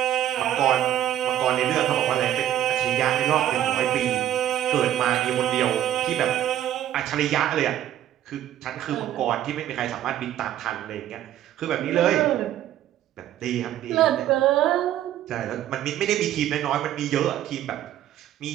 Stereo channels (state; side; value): quieter; left; 12.0 dB